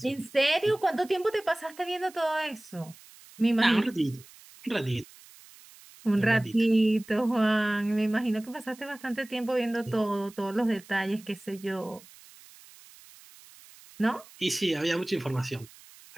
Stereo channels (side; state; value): right; noise; hiss, 22 dB below the sound